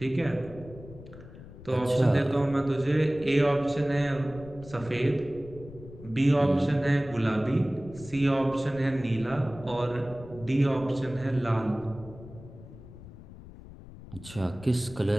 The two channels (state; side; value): noise; left; rumble, 17 dB below the sound